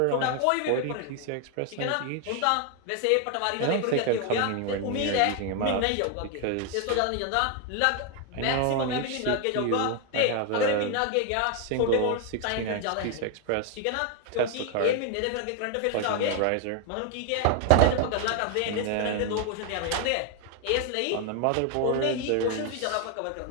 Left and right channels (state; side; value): different; both; correlation 0.01